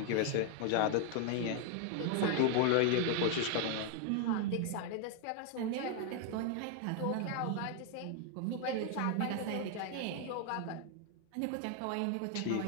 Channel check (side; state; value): both; different; correlation 0.00